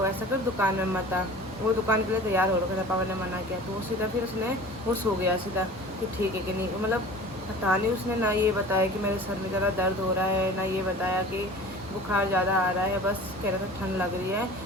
ऐसा कर दुकान में मत आ। वो दुकान के लिए तैयार हो रखा था, पापा ने मना किया। तो वो सीधा फिर वो सो गया सीधा कि ठीक है कि नहीं, मतलब पता नहीं उसने ना ये बताया कि मेरे सर में ज़्यादा दर्द हो रहा है, ना ये बताया कि बुखार ज़्यादा आ रहा है, बस कह रहा था ठंड लग रही है।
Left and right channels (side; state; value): both; normal; correlation 0.41